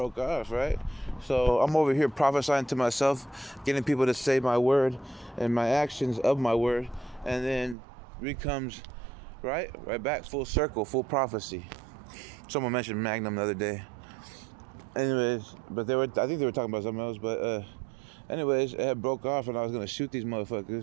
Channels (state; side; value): drops out; left; at 7.8 s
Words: off, right? So I'm over here prophesying to myself, getting people to say my word and my actions of my word, and then comes right back full circle, full prophecy. Someone mentioned Magnum the other day. Anyways, but I think they were talking about something else, but anyways, it had broke off and I was gonna shoot these